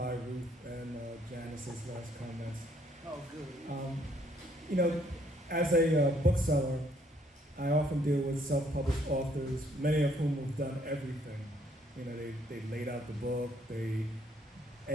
Ruth and Janice's last comments. Oh, good. As a bookseller, I often deal with self-published authors, many of whom have done everything. They laid out the book, they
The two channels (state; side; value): normal; both; correlation 0.67